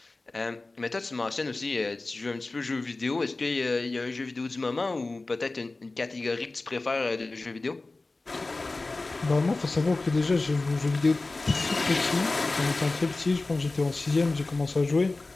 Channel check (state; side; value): quieter; right; 3.3 dB